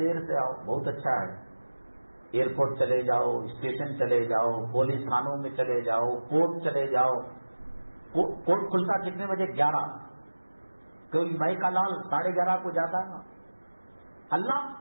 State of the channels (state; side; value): inverted; both; correlation -1.00